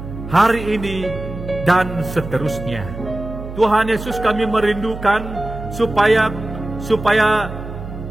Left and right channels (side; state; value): right; noise; hum, 10 dB below the sound